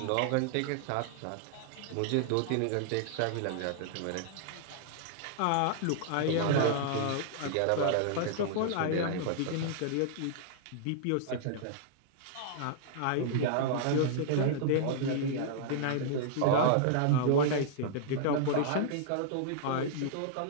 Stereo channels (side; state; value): both; different; correlation -0.01